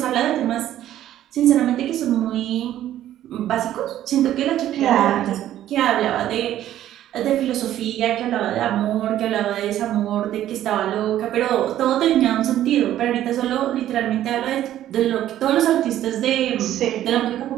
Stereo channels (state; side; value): quieter; left; 12.4 dB